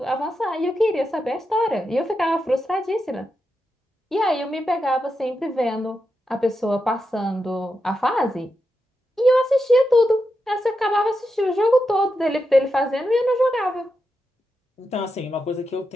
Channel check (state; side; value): normal; both; correlation 0.87